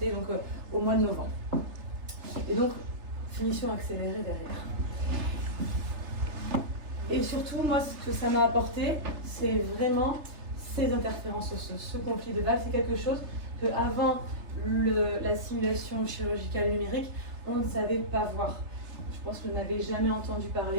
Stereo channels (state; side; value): late; left; 3.3 ms